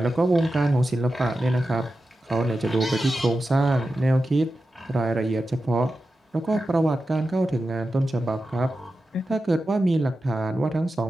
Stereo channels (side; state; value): both; normal; correlation 0.92